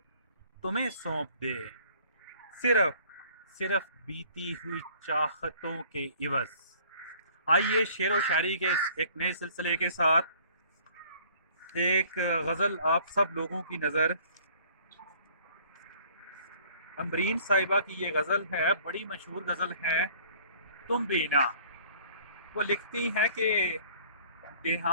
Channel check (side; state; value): both; inverted; correlation -0.54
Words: تمہیں سونپ دیں، صرف بیتی ہوئی چاہتوں کے عوض۔ آئیے شعر و شاعری کے ایک نئے سلسلے کے ساتھ ایک غزل آپ سب لوگوں کی نظر۔ امبرین صاحبہ کی یہ غزل ہے، بڑی مشہور غزل ہے، تم بینا۔ وہ لکھتی ہیں کہ